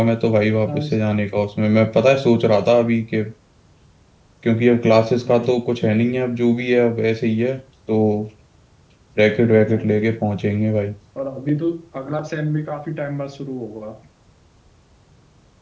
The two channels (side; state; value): both; identical; correlation 1.00